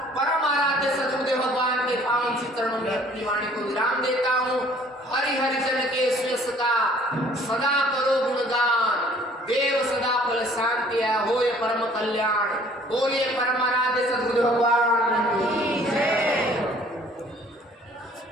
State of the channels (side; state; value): both; normal; correlation 0.56